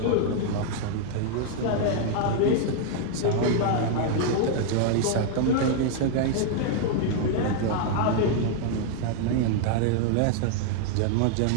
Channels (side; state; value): both; different; correlation 0.00